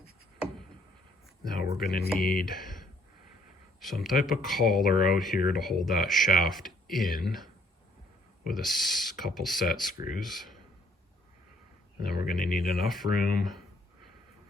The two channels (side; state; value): both; normal; correlation 0.63